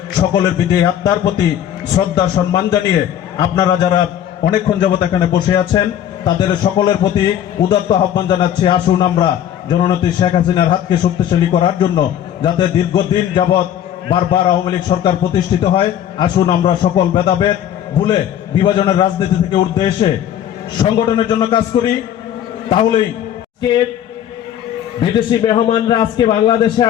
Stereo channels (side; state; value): right; quieter; 10.5 dB